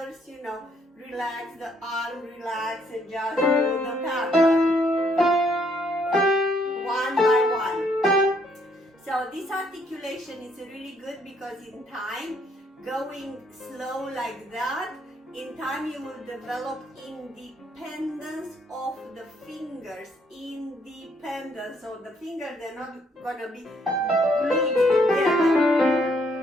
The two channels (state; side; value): normal; both; correlation 0.69